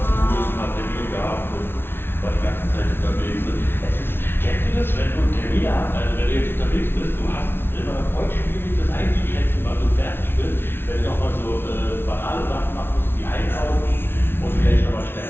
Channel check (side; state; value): right; late; 0.11 ms